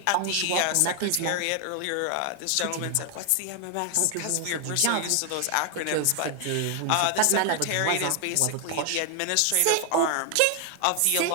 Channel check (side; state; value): both; different; correlation 0.00